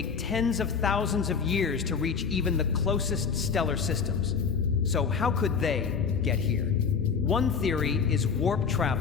tens of thousands of years to reach even the closest stellar systems. So how could they get here? One theory is warp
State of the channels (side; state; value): right; quieter; 6.0 dB